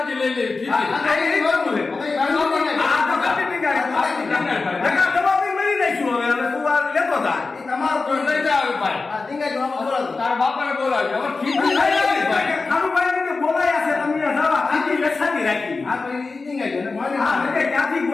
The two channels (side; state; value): right; quieter; 4.0 dB